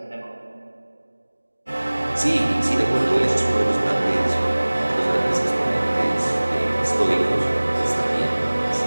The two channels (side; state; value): both; inverted; correlation -1.00